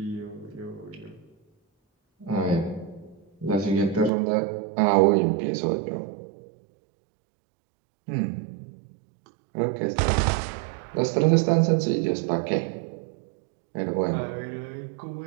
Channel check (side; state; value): left; drops out; at 4.1 s